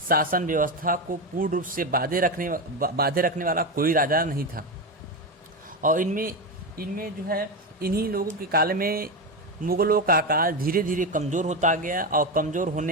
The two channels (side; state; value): both; normal; correlation 0.14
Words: व्यवस्था को पूर्ण रूप से बांधे रखने वाला कोई राजा नहीं था। और इनमें जो है इन्हीं लोगों के काल में मुगलों का काल धीरे धीरे कमज़ोर होता गया और कमज़ोर